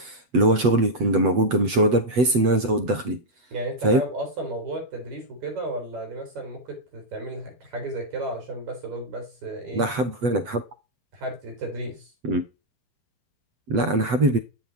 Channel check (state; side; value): late; left; 8.1 ms